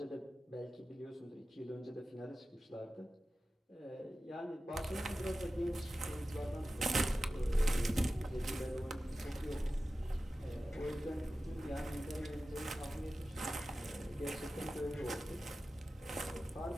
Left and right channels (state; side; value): normal; both; correlation 0.94